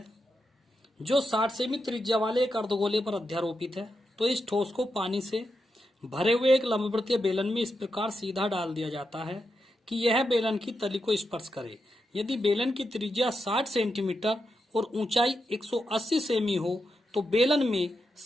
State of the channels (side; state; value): both; normal; correlation 0.86